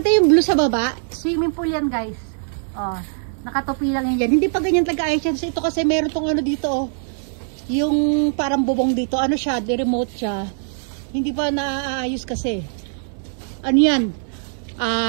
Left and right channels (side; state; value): left; silent; 65 dB below the other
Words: yung blue sa baba, swimming pool yan guys. Oh, nakatopi lang yan dyan. Hindi pa ganyan talaga-ayos yan. Ito kasi meron tong dito oh. Yung parang bubong dito. Siya, remote siya. Hindi pa naaayos kasi. Yan?